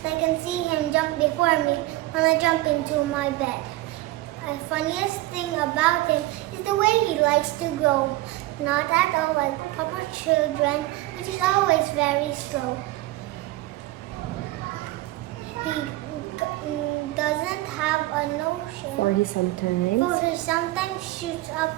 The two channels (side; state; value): left; quieter; 18.0 dB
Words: I can see him jump before me when I jump into my bed. The funniest thing about him is the way he likes to grow. Not at all like proper children, but he's always very slow. He doesn't have a notion. For he sometimes Shoots up